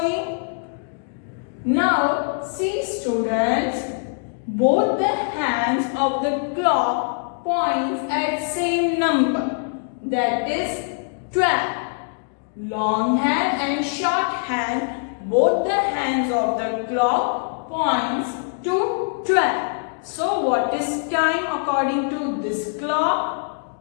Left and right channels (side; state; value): right; silent; digital silence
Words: Now see students, both the hands of the clock points at same number, that is 12. Long hand and short hand, both the hands of the clock points to 12. So what is time according to this clock?